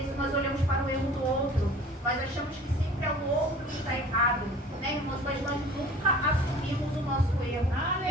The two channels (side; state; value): both; normal; correlation 0.45